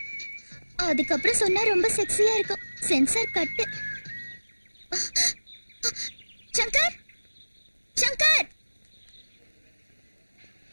அதுக்கப்புறம் சொன்னா ரொம்ப செக்ஸியா இருக்கும். Sensor cut. Shankar, Shankar.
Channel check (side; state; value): both; inverted; correlation -1.00